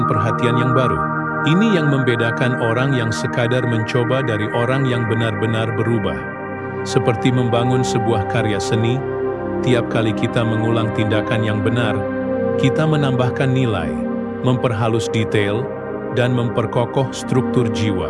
perhatian yang baru. Ini yang membedakan orang yang sekadar mencoba dari orang yang benar-benar berubah. Seperti membangun sebuah karya seni, tiap kali kita mengulang tindakan yang benar, kita menambahkan nilai, memperhalus detail, dan memperkokoh struktur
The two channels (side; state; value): both; identical; correlation 1.00